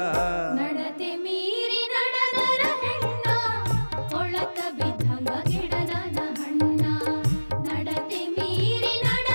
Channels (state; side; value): inverted; both; correlation -1.00